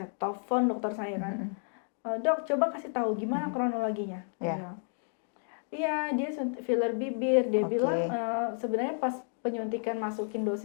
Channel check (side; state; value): right; silent; 57 dB below the other